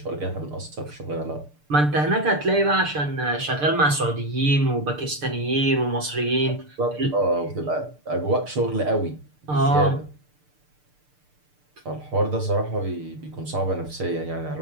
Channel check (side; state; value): left; late; 6.7 ms